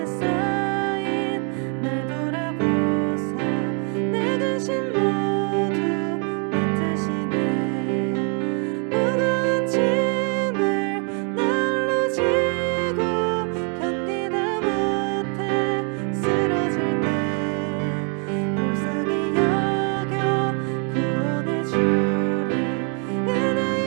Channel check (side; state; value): left; quieter; 39.3 dB